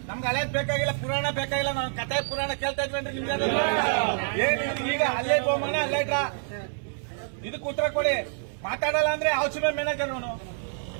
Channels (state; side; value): silent; left; 60 dB below the other